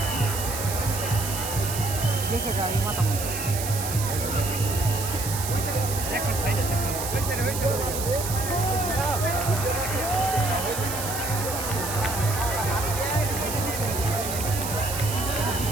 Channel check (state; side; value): noise; right; hiss, 5 dB below the sound